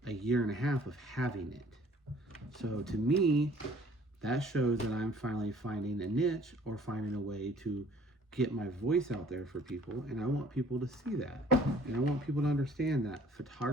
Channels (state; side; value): normal; both; correlation 0.55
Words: a year and a half of having it. So to me, that shows that I'm finally finding a niche or finding a way to get my voice out there for people. And I want people to see that. And I want people to understand that